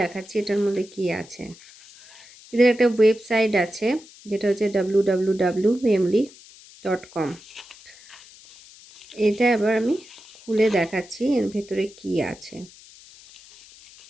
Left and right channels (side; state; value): left; noise; hiss, 22 dB below the sound